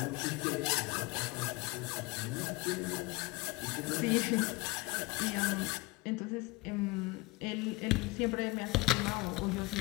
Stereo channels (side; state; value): right; quieter; 23.6 dB